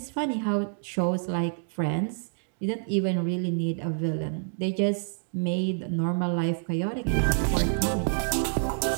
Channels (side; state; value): left; silent; digital silence